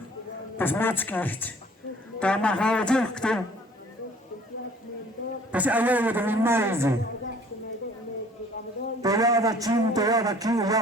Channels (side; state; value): both; normal; correlation 0.53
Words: pasmatskicht, ta mahawajah kto, pas ayawa da mimaizi. Toyada Chin, Toyada